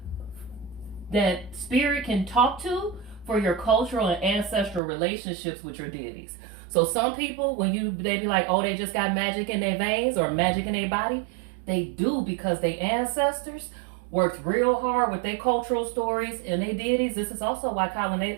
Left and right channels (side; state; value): left; drops out; at 4.8 s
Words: that spirit can talk to for your cultural and ancestral relationships with your deities. So some people, they be like, oh, they just got magic in their veins or magic in their body, they do because their ancestors worked real hard with their cultural stories and their deities. This is also why